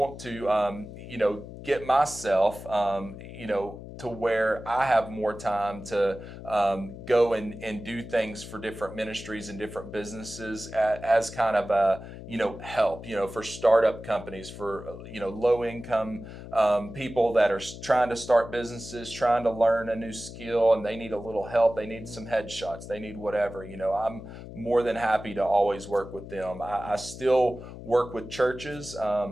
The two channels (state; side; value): noise; left; hum, 13 dB below the sound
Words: to, get myself, to where I have more time to go and do things for different ministries and different businesses as kind of a, help, for startup companies, for, low income people that are trying to start businesses, trying to learn a new skill, and they need a little help. They need some headshots. They need whatever. I'm more than happy to always work with them. I still work with churches.